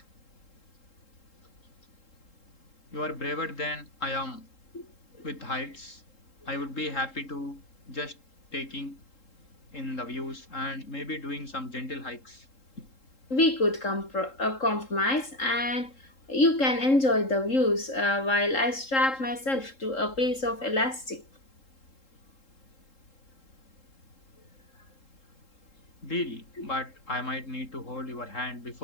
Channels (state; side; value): late; right; 3.7 ms